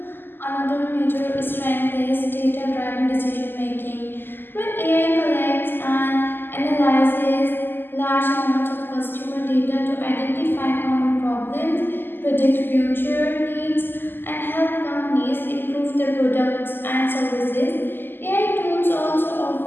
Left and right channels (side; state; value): right; late; 0.096 ms